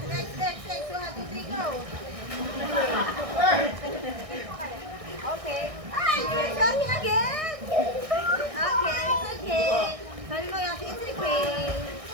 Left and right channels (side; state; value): left; late; 1.6 ms